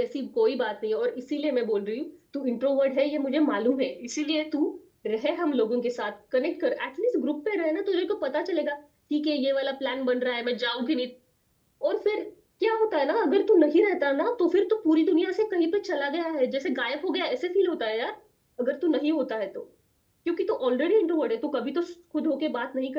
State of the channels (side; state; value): both; identical; correlation 1.00